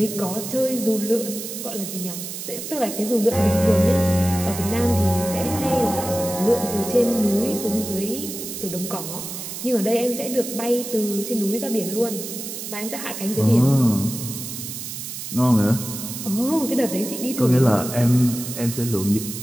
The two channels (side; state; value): right; noise; hiss, 8 dB below the sound